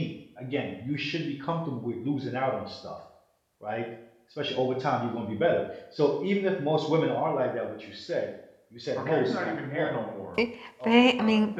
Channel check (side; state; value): both; identical; correlation 1.00